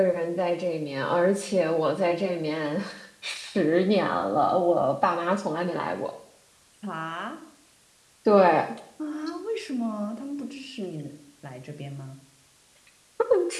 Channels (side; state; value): both; identical; correlation 1.00